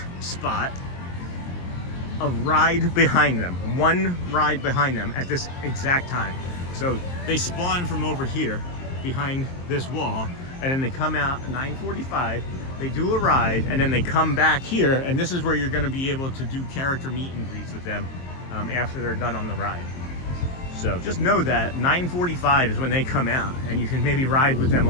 spot, a ride behind them, one ride behind them at this exact time. So they spawn from over here behind this wall, and then they come out at 9:45, they do a ride, and then they come back here, and this is where you're going to be able to do character meet and greets with them after they're done on the ride. So just know that 9:45 is when they come out, and you can maybe ride with them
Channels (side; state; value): right; late; 23 ms